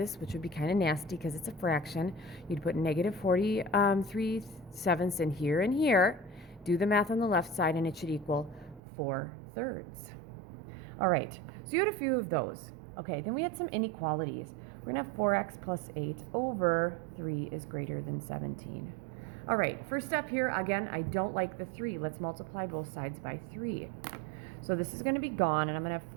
which would be kind of nasty because it's a fraction, you'd put negative 43 sevenths in here and here. Do the math on the left side, and it should equal 4 thirds. All right, so you had a few of those. Okay, then we had some inequalities. We're going to have 4x plus 8 over 3 is greater than 17. All right, first step here, again, I don't like the 3. Let's multiply both sides by 3. So this is going to be gone, and I'm going to have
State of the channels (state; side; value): drops out; left; at 8.8 s